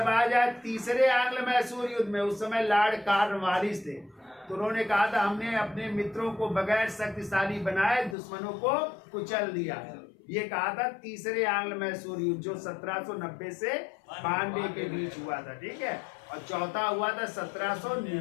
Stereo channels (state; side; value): drops out; right; at 8.2 s